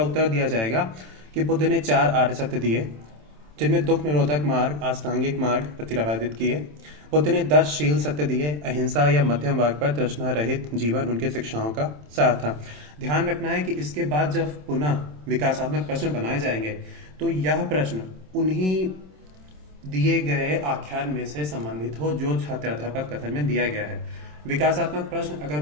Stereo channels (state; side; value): late; left; 27 ms